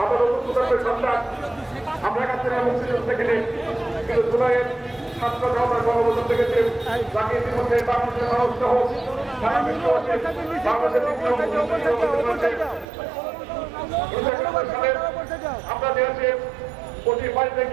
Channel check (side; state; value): left; drops out; at 12.9 s